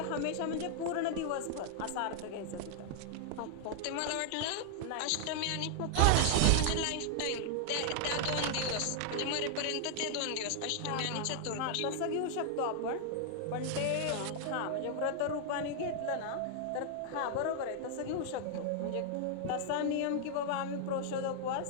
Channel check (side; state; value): both; different; correlation -0.01